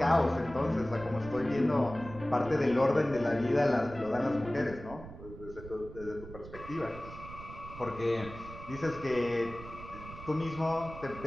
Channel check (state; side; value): noise; right; rumble, 14 dB below the sound